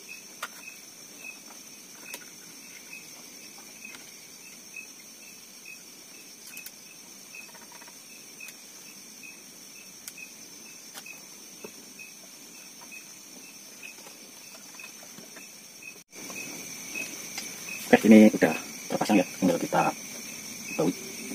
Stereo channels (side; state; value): both; identical; correlation 1.00